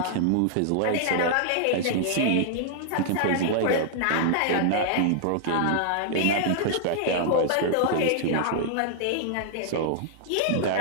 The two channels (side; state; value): both; different; correlation -0.01